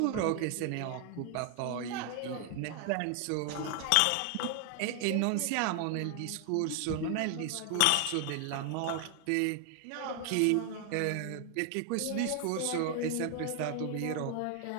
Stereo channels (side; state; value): both; different; correlation 0.00